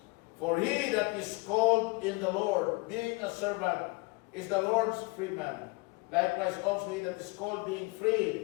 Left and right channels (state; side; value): quieter; right; 27.1 dB